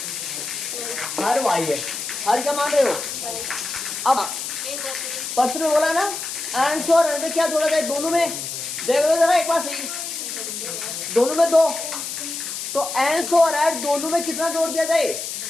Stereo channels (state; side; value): noise; left; hiss, 6 dB below the sound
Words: हर y है। हर क्या मान रहे हो। अब प्रश्न में बोला ना, अंश और हर में क्या जोड़ा जाए, दोनों में, देख लो जरा एक बार सही, दोनों में 2, तो अंश और हर दोनों में कितना जोड़ दिया जाए।